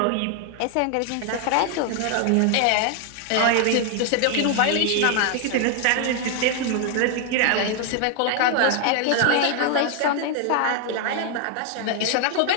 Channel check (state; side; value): different; both; correlation 0.00